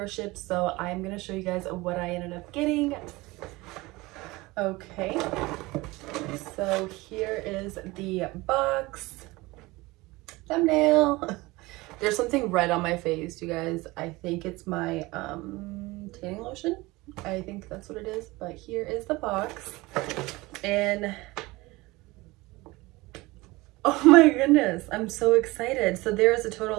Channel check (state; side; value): quieter; left; 21.6 dB